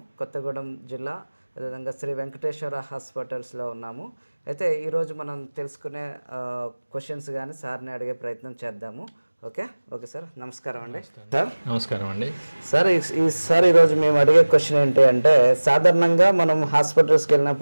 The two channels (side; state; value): both; inverted; correlation -1.00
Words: కొత్తగూడెం జిల్లా, అదేవిధంగా శ్రీ వెంకటేశ్వర హాస్పిటల్స్లో ఉన్నాము. అయితే ఈరోజు మనం తెలుసుకునే క్వశ్చన్స్ కానీ సార్ని అడిగే ప్రయత్నం చేద్దాము. ఓకే సార్, నమస్కారం అండి. సార్ నమస్కారం అండి. సార్ ఈరోజు మేము అడిగే క్వశ్చన్ ఏంటి అంటే, సాధారణంగా మనం హాస్పిటల్స్కి